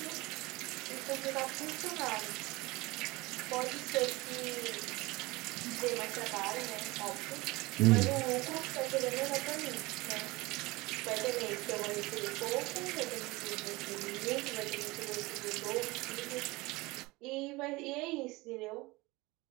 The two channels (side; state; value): left; quieter; 22.2 dB